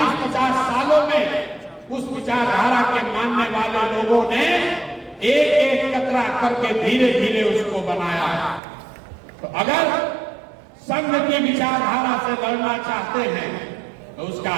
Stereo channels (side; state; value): left; drops out; at 8.6 s